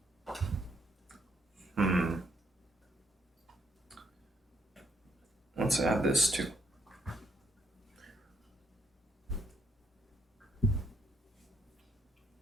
Let's add this too.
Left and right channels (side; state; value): both; normal; correlation 0.73